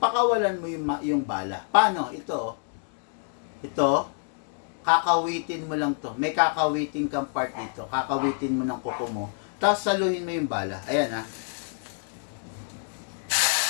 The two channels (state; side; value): silent; right; 60 dB below the other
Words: mo yung bala. Paano? Ito, kakawitin mo lang to. May kakawitin kang part dito. Kakawitin mo ng kuko mo. Tapos saluhin mo yung bala. Ayan ha.